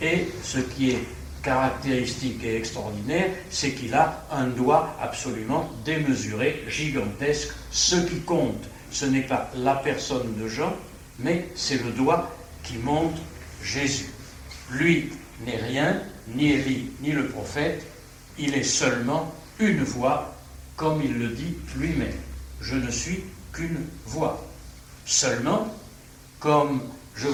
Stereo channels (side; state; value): both; identical; correlation 1.00